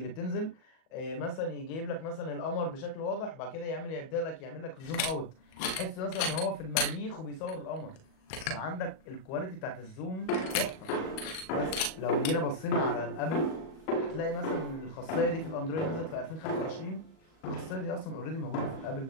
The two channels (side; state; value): right; late; 38 ms